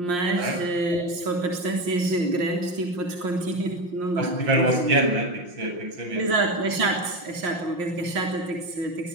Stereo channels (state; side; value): late; left; 5.6 ms